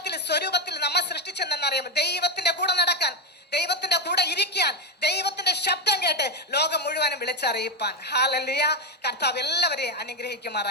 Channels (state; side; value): normal; both; correlation 0.09